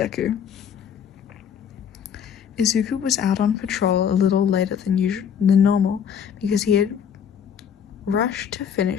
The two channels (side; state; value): right; quieter; 7.9 dB